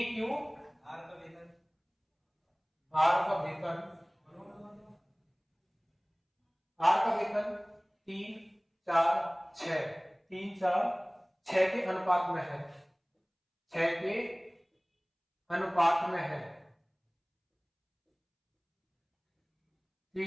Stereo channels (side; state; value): both; identical; correlation 1.00